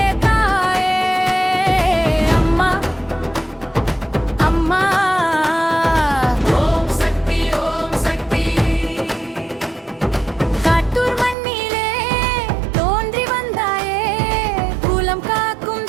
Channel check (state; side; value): drops out; left; at 11.4 s